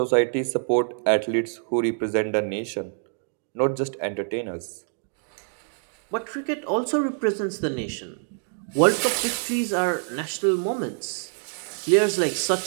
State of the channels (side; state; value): left; silent; 59 dB below the other